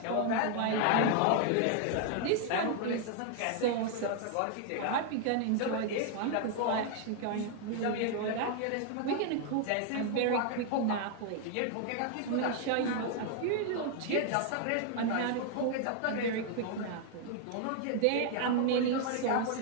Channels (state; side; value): different; both; correlation 0.00